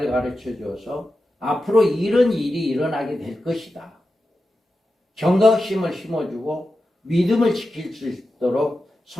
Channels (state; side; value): normal; both; correlation 0.91